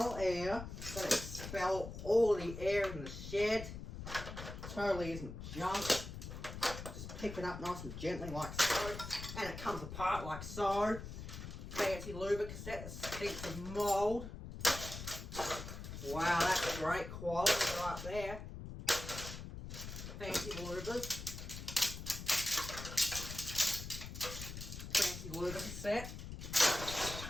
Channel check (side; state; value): left; noise; rumble, 9 dB below the sound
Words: gonna expel all the air in the shed. Totally isn't junk. Just pick it up nice and gently like so, and it comes apart like so. Fancy lubricant cassette that stinks of mould. Wow, that's great quality right there. Fancy lubers. Fancy lubricant cassette.